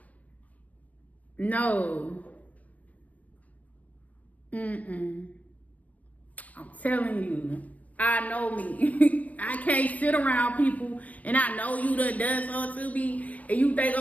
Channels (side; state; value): right; late; 0.070 ms